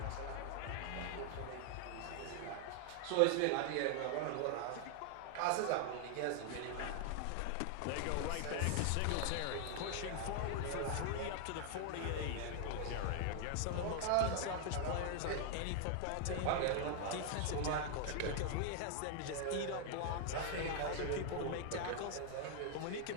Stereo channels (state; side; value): different; both; correlation 0.00